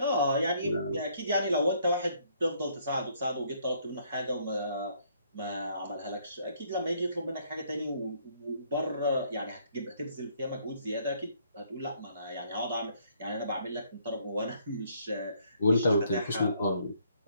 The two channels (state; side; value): inverted; both; correlation -0.66